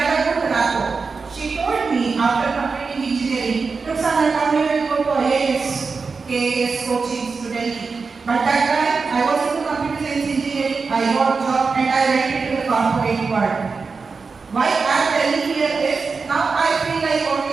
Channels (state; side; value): quieter; left; 4.7 dB